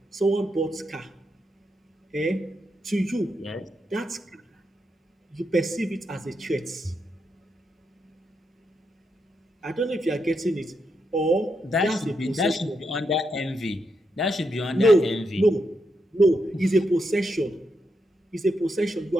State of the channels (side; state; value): both; normal; correlation 0.82